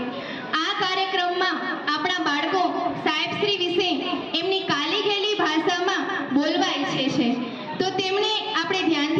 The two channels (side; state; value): both; identical; correlation 1.00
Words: આ કાર્યક્રમમાં આપણા બાળકો સાહેબશ્રી વિશે એમની કાલી ગયેલી ભાષામાં બોલવા ઈચ્છે છે, તો તેમણે આપણે